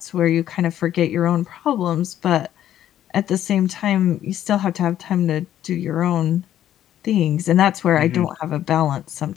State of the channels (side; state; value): right; quieter; 11.6 dB